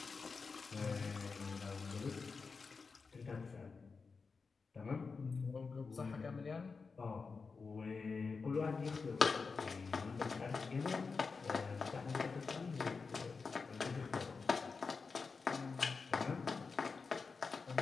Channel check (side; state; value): right; quieter; 4.7 dB